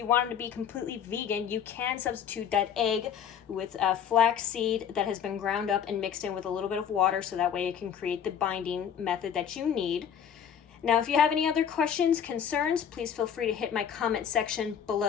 wanted to be completely vegan, you can substitute that egg with flax seed that has been ground up and mixed in with a little bit of water so that way it can create the binding method that you need. Now, if you have any other questions, concerns, please feel free to hit my comment section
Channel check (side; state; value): right; quieter; 8.3 dB